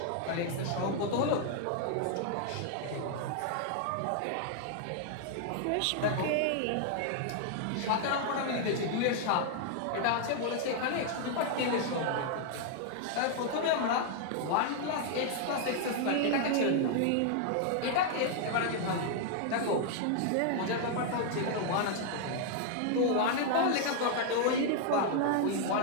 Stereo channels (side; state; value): both; different; correlation 0.00